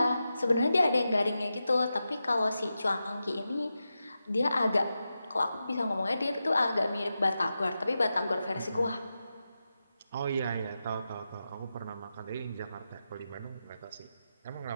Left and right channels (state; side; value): inverted; both; correlation -0.90